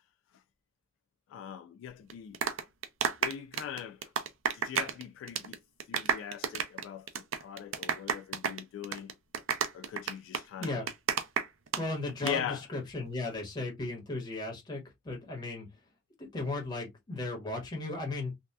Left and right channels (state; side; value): normal; both; correlation 0.11